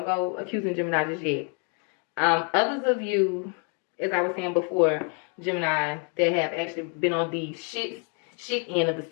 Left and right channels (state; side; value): quieter; right; 39.6 dB